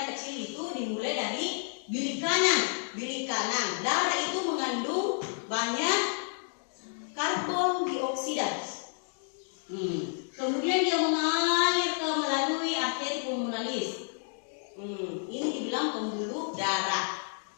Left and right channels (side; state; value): right; silent; 57 dB below the other